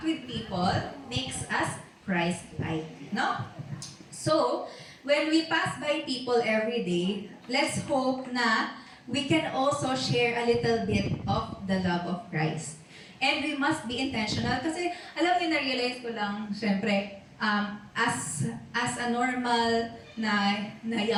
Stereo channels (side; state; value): both; identical; correlation 1.00